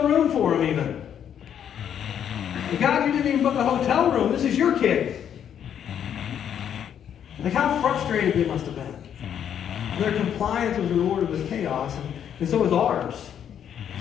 room for them even. But God, you didn't even book a hotel room. This is your kid. Like, how frustrated they must have been. Their compliance was rewarded with chaos, and so is ours.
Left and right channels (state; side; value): quieter; right; 9.1 dB